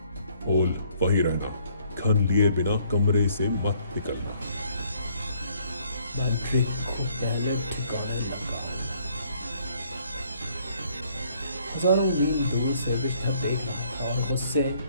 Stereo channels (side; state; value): both; inverted; correlation -0.65